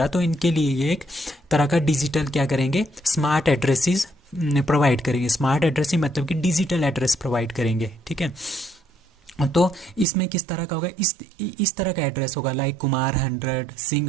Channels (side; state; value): left; drops out; at 10.1 s